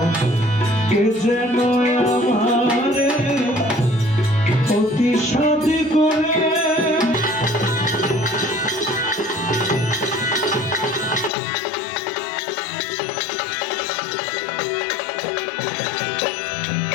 কে যেন আমারে অতি সাদ করে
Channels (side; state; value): right; drops out; at 11.3 s